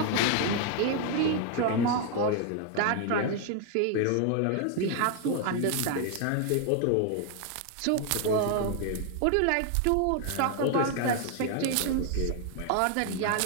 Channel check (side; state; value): both; different; correlation 0.00